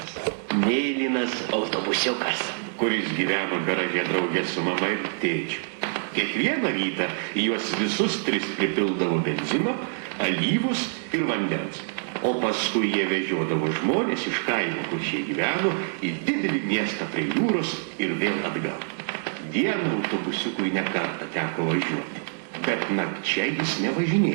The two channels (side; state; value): left; silent; 61 dB below the other